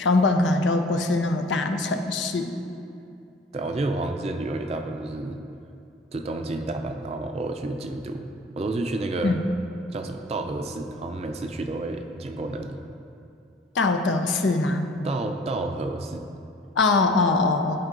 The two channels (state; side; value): normal; both; correlation 0.47